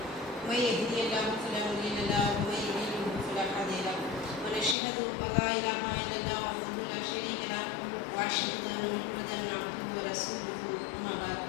من يهده الله فلا مضل له ومن يضلل فلا هادي له ونشهد أن لا إله إلا الله وحده لا شريك له وأشهد أن محمدا عبده ورسوله أما بعد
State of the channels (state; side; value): drops out; right; at 4.8 s